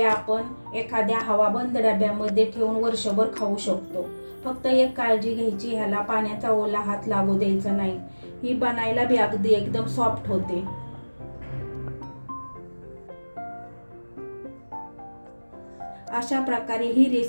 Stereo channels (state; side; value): inverted; both; correlation -1.00